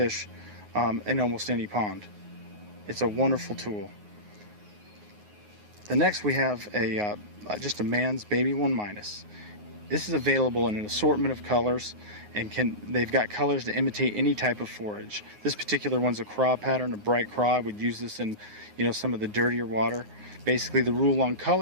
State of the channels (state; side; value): late; left; 9.5 ms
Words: in almost any pond. It's a wonderful tool. The next we have just a man's baby 1-. This is available in an assortment of colors, and they've got colors to imitate any type of forage. This particular one's a craw pattern, a bright craw. I would use this in, some of the dirtier water. Basically, the rule on